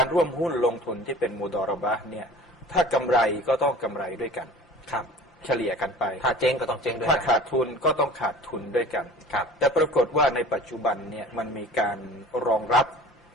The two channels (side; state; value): both; normal; correlation 0.43